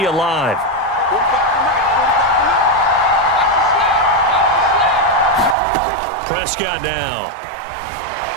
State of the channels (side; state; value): left; drops out; at 5.6 s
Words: alive. Prescott now.